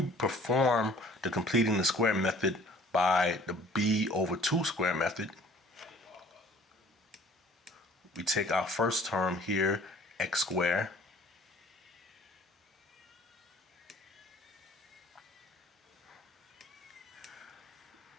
perform the completing the square method by the b over 2 square method, we take our first term here, x squared,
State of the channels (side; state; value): both; normal; correlation 0.52